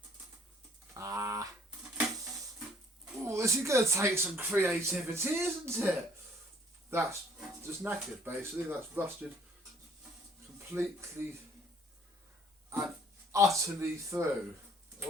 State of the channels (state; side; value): normal; both; correlation 0.59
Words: Oh, this is going to take some creativity, isn't it? That's just knackered, basically. That's rusted completely and utterly through.